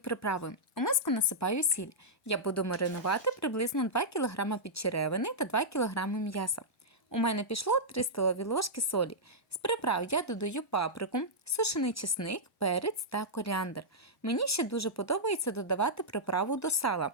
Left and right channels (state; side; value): normal; both; correlation -0.10